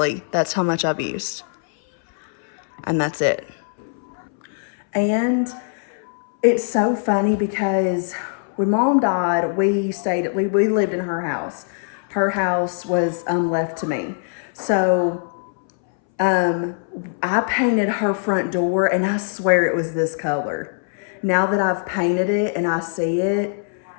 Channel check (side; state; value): right; silent; 62 dB below the other